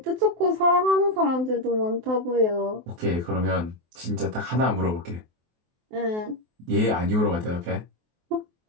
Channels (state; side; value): late; left; 23 ms